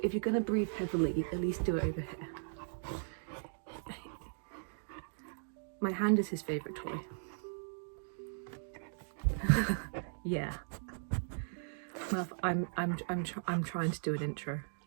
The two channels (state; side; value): silent; left; digital silence